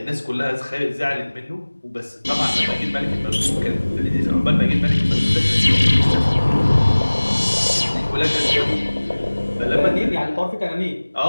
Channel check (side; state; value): both; inverted; correlation -1.00